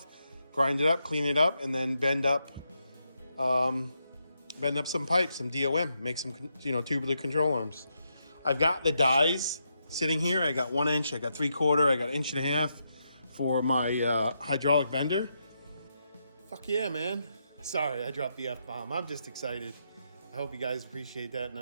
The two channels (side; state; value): both; inverted; correlation -0.82